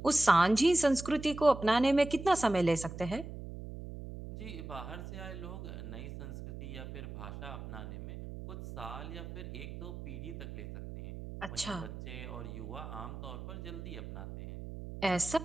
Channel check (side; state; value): right; noise; hum, 10 dB below the sound